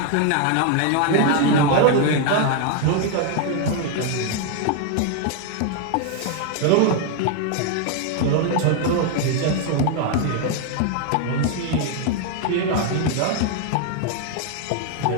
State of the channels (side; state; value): both; different; correlation 0.01